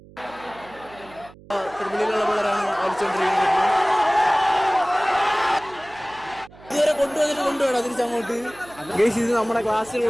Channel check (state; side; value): noise; right; hum, 22 dB below the sound